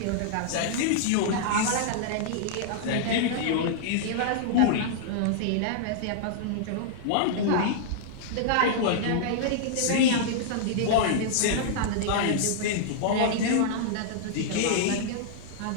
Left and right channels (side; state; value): both; different; correlation -0.01